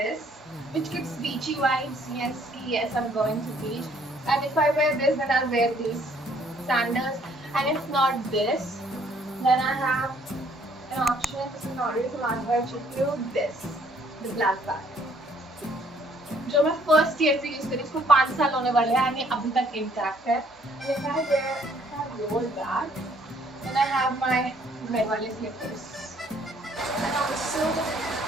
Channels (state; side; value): normal; both; correlation 0.63